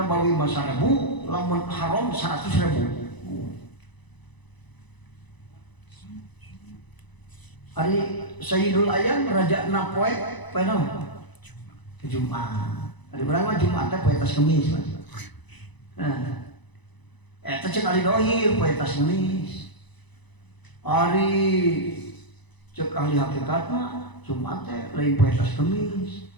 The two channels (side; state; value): right; late; 1.0 ms